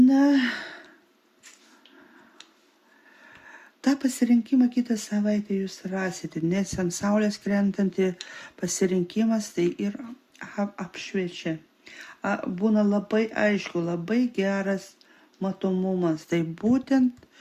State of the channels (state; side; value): identical; both; correlation 1.00